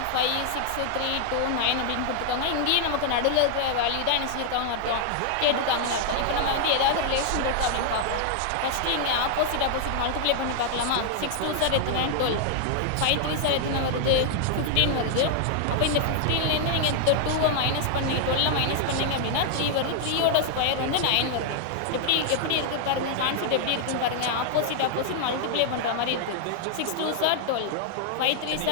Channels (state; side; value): different; both; correlation -0.01